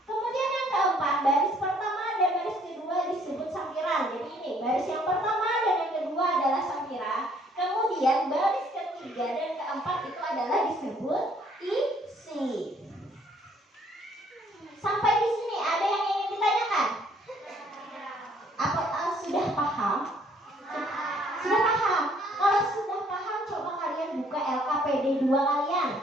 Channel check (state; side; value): normal; both; correlation 0.63